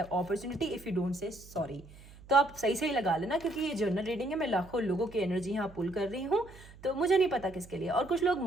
if you don't say sorry. तो आप सही सही लगा लेना, क्योंकि ये जर्नल रीडिंग है, मैं लाखों लोगों की एनर्जी यहाँ पुल कर रही हूँ, तो मुझे नहीं पता किसके लिए। और कुछ लोग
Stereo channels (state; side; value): noise; right; hum, 20 dB below the sound